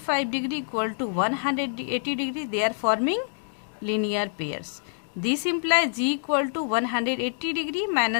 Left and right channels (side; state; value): right; silent; digital silence